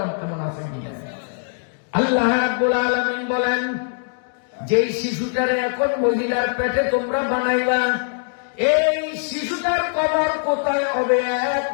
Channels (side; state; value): right; silent; 64 dB below the other